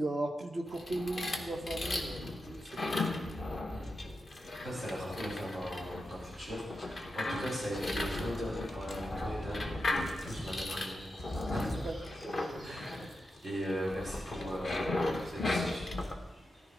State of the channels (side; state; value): both; normal; correlation 0.88